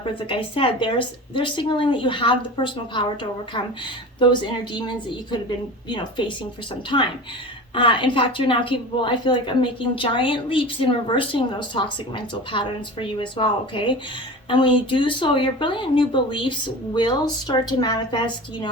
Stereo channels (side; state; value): both; normal; correlation 0.33